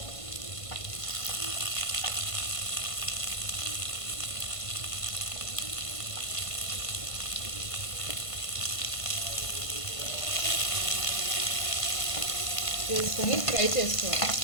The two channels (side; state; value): right; late; 1.5 ms